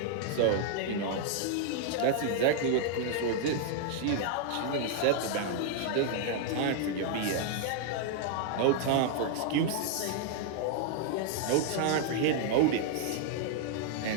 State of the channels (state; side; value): different; both; correlation 0.00